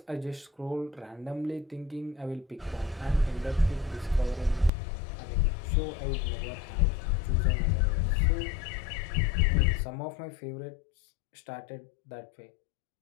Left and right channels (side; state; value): right; drops out; at 4.7 s